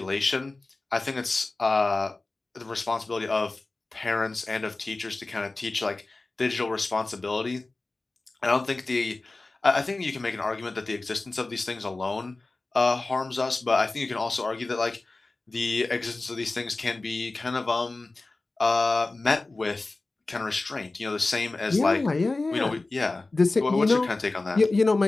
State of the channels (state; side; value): quieter; right; 3.3 dB